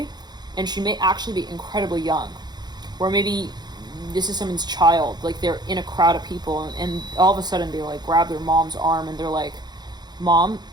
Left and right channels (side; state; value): left; late; 0.20 ms